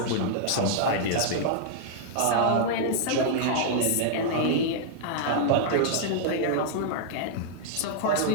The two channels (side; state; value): both; different; correlation -0.01